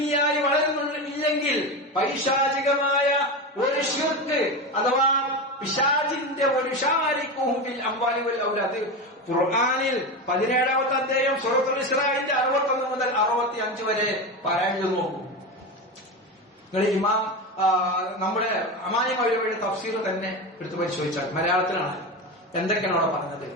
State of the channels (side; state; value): both; normal; correlation 0.20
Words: വളരുന്നില്ലെങ്കിൽ പൈശാചികമായ ഒരു ശിർക്ക് അഥവാ പിശാചിന്റെ ഒരു ഷാരിക്കുഹും ഫിൽ അംവാലി വൽ ഔലാദ് ഖുർആനിൽ 17ാമത്തെ അധ്യായം സൂറത്തുൽ ഇസ്രാഇന്റെ 61 മുതൽ 65 വരെ പാരായണം നോക്കൂ. നിങ്ങൾ ഇമാം നമ്മുടെ അമാനി മൗലവിയുടെ തഫ്സീർ തന്നെ എടുത്തു പരിശോധിച്ചാൽ മലയാളത്തിലാണ് എന്തൊക്കെയാണ് അവിടെ പറഞ്ഞത്.